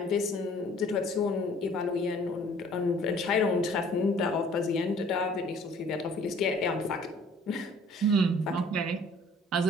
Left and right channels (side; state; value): both; normal; correlation 0.54